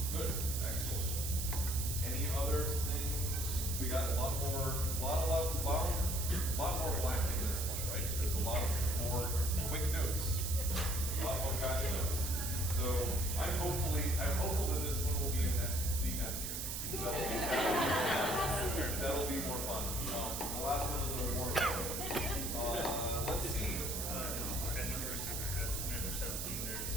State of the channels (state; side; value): noise; right; hiss, 3 dB below the sound